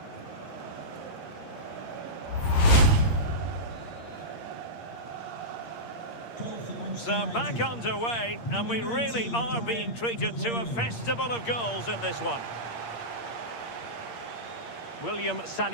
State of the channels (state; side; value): late; right; 8.6 ms